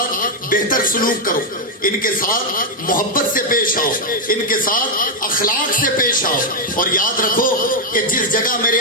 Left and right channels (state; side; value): normal; both; correlation 0.01